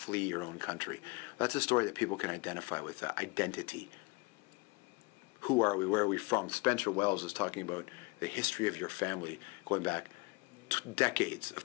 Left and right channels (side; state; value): right; quieter; 26.9 dB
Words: your own country. That's a story that people can identify with, identity. Who are we? Where are we from? Spencer Wells is talking about the history of your family going back decades of